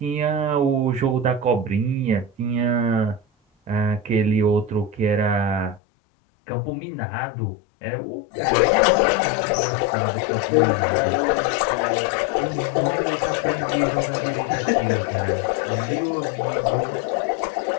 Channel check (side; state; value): right; drops out; at 5.8 s